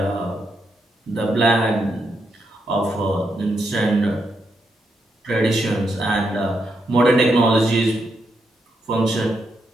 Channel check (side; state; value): both; normal; correlation 0.81